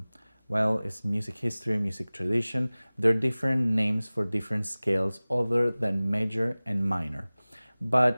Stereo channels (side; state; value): both; inverted; correlation -0.99